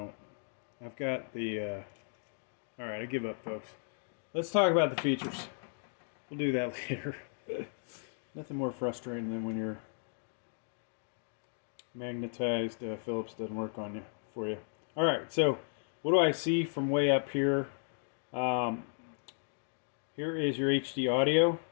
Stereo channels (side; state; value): right; silent; digital silence